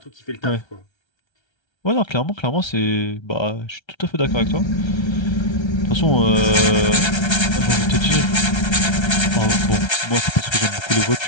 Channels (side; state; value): right; late; 1.3 ms